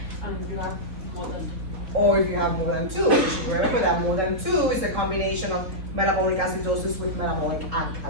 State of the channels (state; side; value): late; left; 3.6 ms